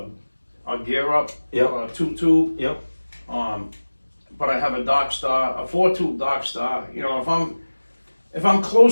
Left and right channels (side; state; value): both; inverted; correlation -1.00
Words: Gear Up, 2-tube. Yep. But I have a Dock Star, a 4-tube Dock Star. You know, if I'm